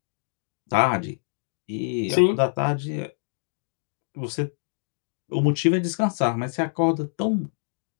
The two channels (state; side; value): silent; right; digital silence